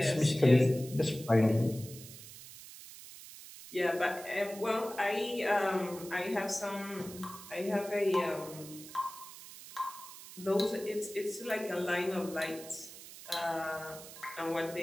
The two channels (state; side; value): noise; right; hiss, 15 dB below the sound